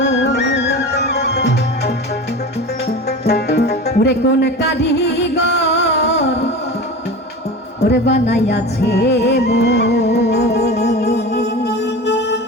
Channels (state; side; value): normal; both; correlation 0.31